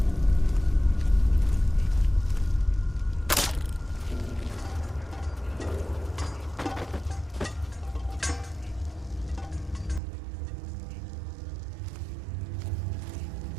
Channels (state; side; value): drops out; left; at 10.0 s